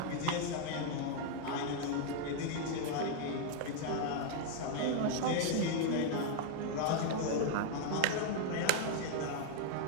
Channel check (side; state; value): both; different; correlation 0.00